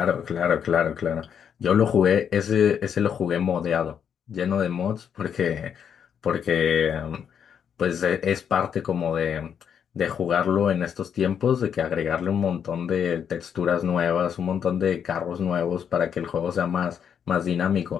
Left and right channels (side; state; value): right; quieter; 8.0 dB